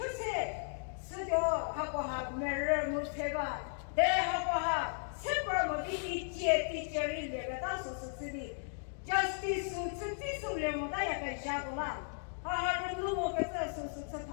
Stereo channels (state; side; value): silent; right; digital silence